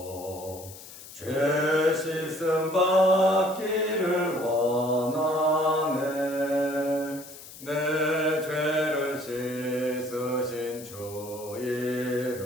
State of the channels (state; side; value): noise; left; hiss, 16 dB below the sound